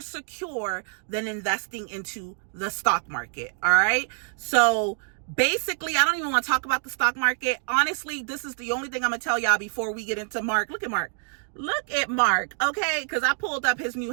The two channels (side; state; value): left; silent; 61 dB below the other